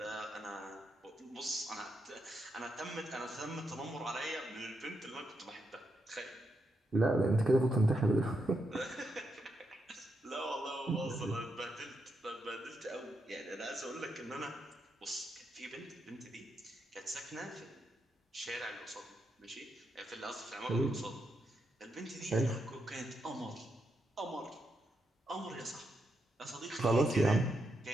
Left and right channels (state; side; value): normal; both; correlation 0.82